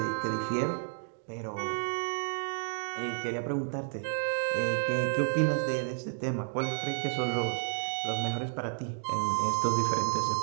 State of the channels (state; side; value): silent; left; 56 dB below the other